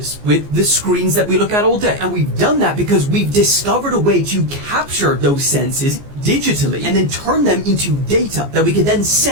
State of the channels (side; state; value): left; late; 14 ms